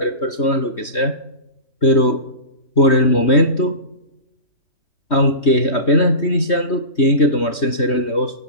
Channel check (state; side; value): late; right; 3.2 ms